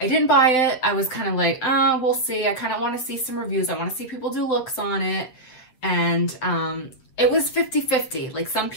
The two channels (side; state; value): right; late; 8.0 ms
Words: I didn't buy it. I was kind of like, oh, we'll see. I kind of want to see some reviews. I want to see people do looks on it. And it was 50-50. Like some